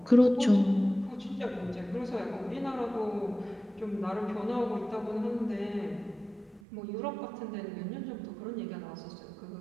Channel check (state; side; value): drops out; left; at 6.6 s